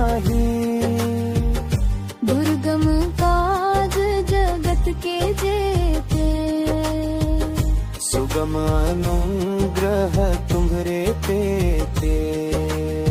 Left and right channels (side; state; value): both; identical; correlation 1.00